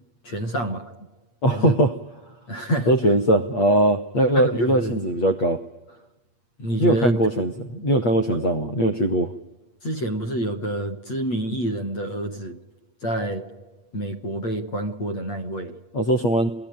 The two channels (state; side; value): late; right; 8.5 ms